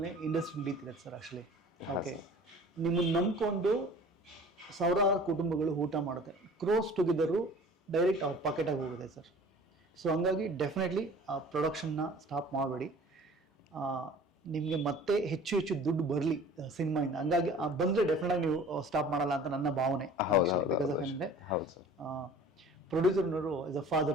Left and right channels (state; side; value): normal; both; correlation 0.46